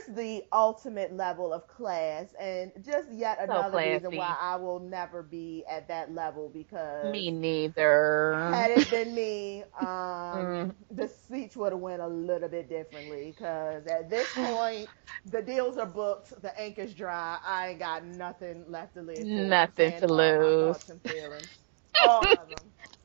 the ultimate level of class, and just yet So another reason why classy. I will never be at that level, because Me neither. had it been me, Mm. the speech would have went a little bit differently, because at this point the deals are booked, the ink is dry, I ain't got nothing left to live for. I'm Nothing saying to all my lose. thoughts and feelings, all of them,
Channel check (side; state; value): left; silent; digital silence